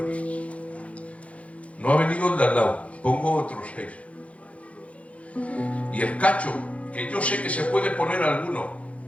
No ha venido el de al lado, pongo otros 6. Y el cacho, que yo sé que se puede poner alguno,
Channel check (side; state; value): right; late; 0.064 ms